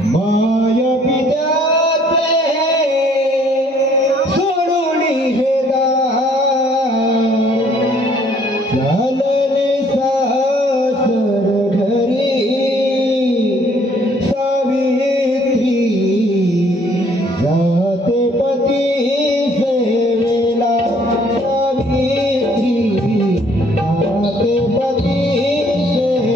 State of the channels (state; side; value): normal; both; correlation 0.61